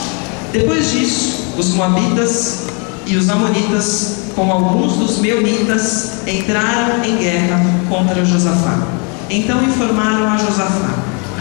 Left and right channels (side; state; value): right; quieter; 35.6 dB